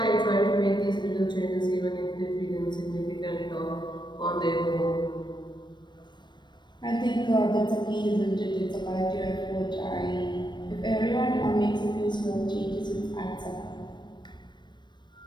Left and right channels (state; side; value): late; right; 0.22 ms